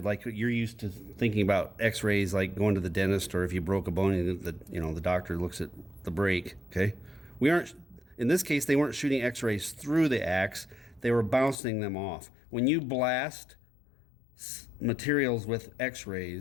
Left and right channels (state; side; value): drops out; right; at 11.6 s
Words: like you're used to thinking about X-rays, like going to the dentist, or if you broke a bone, the doctor looks at the break. Okay, we aren't. In this case, they weren't shooting X-rays through the axe. they were bouncing them off. When you blast materials with